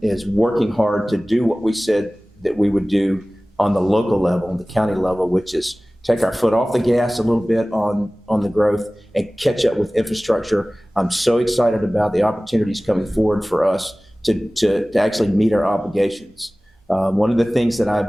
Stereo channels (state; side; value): normal; both; correlation 0.98